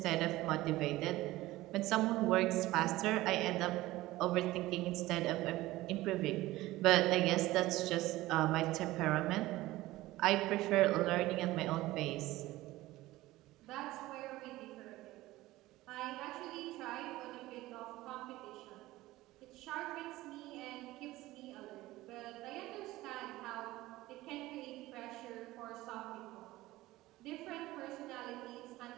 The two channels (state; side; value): quieter; left; 17.7 dB